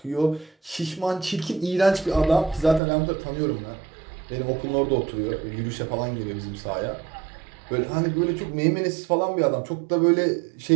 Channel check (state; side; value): drops out; left; at 2.8 s